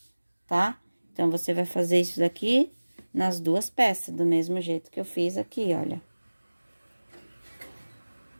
tá? Então, você vai fazer isso daqui nas 2 peças, do mesmo jeito que eu fiz aqui, olha.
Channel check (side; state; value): both; inverted; correlation -1.00